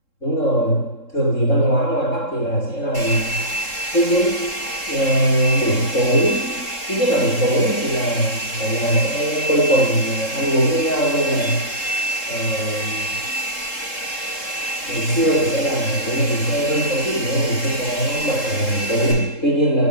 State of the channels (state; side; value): late; right; 3.7 ms